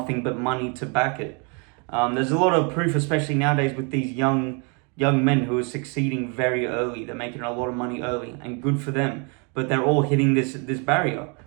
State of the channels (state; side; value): quieter; left; 35.1 dB